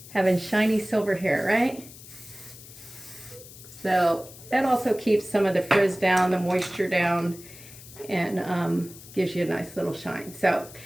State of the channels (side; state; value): left; noise; hiss, 18 dB below the sound